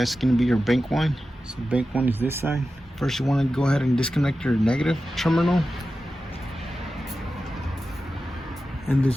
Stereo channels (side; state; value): both; normal; correlation 0.93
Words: going to be your bank 1. So bank 1 is this side. First you want to go ahead and disconnect your negative terminal. And the